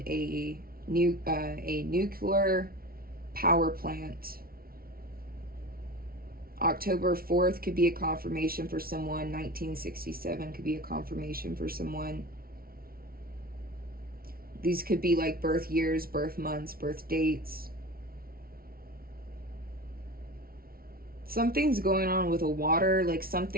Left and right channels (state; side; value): late; left; 0.43 ms